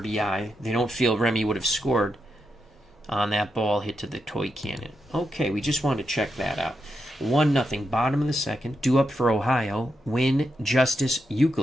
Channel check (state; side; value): normal; both; correlation 0.84